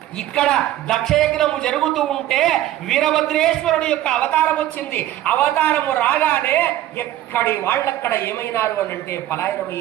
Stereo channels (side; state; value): left; quieter; 13.7 dB